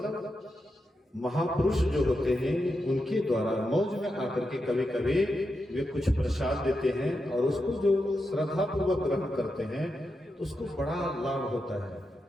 महापुरुष जो होते हैं उनके द्वारा मौज में आकर के कभी कभी वे कुछ प्रसाद देते हैं, और उसको जो श्रद्धा पूर्वक ग्रहण करते हैं तो उसको बड़ा लाभ होता है।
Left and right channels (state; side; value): normal; both; correlation 0.87